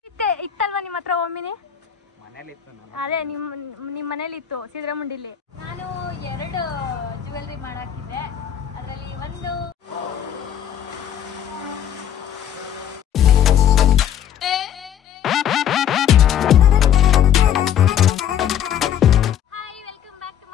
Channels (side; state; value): right; quieter; 9.7 dB